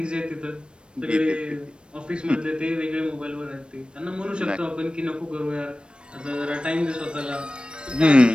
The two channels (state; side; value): late; left; 0.055 ms